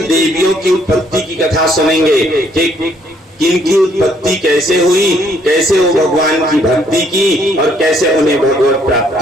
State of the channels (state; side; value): normal; both; correlation 0.67